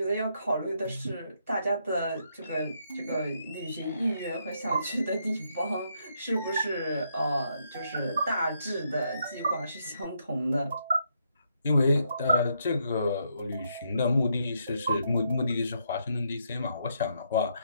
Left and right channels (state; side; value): inverted; both; correlation -0.76